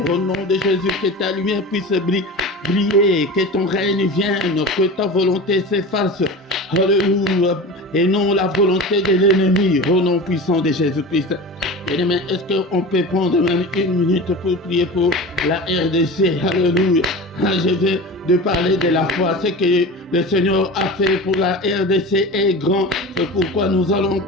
Au nom de Jésus, que ta lumière puisse briller, que ton règne vienne, que ta volonté s'efface. Alléluia. Et non la volonté de l'ennemi. Au nom puissant de Jésus-Christ. Bien-aimé, est-ce qu'on peut prendre même une minute pour prier pour la RDC? Alléluia. Je viens de parler de la foi. Ce que le Seigneur a fait pour la RDC est grand. C'est pourquoi nous allons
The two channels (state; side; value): normal; both; correlation 0.32